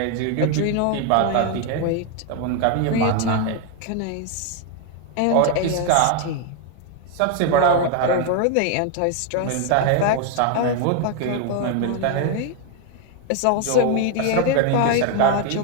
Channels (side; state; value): both; different; correlation 0.01